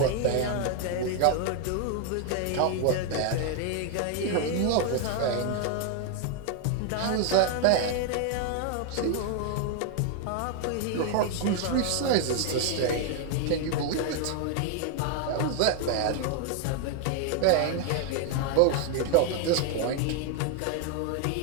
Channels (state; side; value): different; both; correlation 0.00